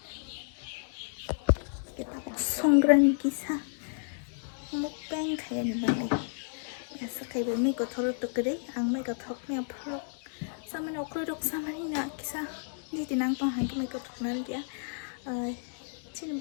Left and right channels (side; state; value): right; silent; digital silence